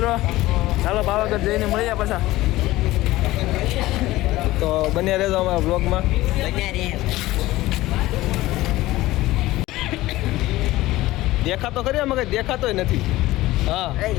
ચાલો પાવાગઢ જઈને મળીએ પાછા. તો બન્યા રહેજો અમારા બ્લોગમાં. દેખાતો ખરી અમે કઈ દેખાતોય નથી. હા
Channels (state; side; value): quieter; right; 17.5 dB